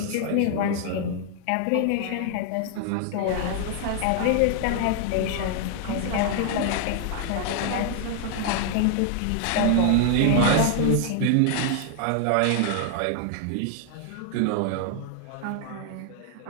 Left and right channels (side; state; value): both; different; correlation 0.00